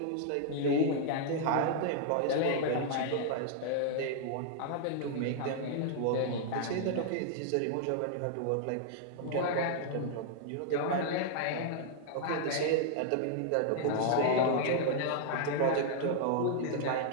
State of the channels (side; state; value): both; different; correlation -0.01